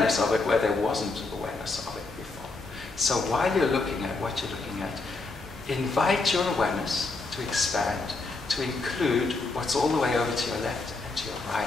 of it where there wasn't awareness of it before. So while you're looking at what you're looking at, invite your awareness to expand, to include what's all the way over to your left and to your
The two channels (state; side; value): quieter; right; 3.6 dB